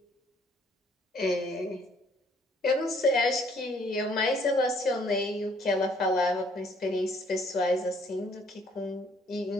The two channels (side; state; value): both; normal; correlation 0.63